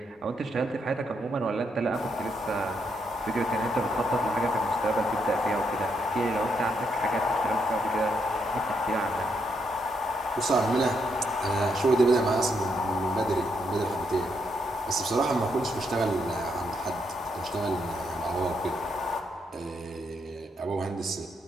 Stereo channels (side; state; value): both; normal; correlation 0.78